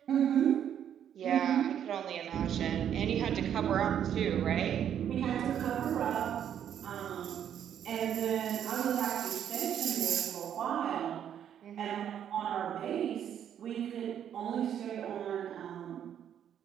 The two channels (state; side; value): quieter; left; 9.5 dB